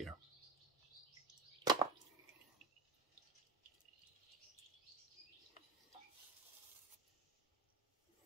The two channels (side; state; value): left; quieter; 3.3 dB